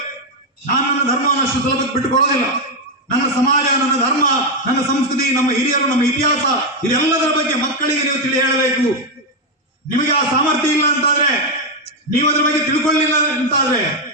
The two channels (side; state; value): both; normal; correlation 0.04